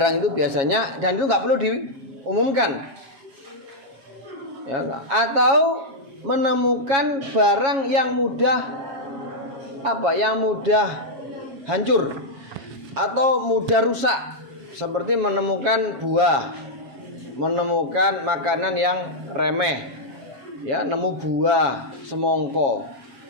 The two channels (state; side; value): late; left; 7.3 ms